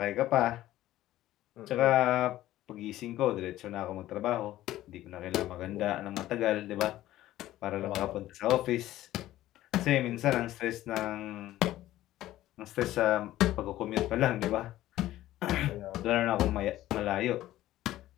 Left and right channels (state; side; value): quieter; right; 14.7 dB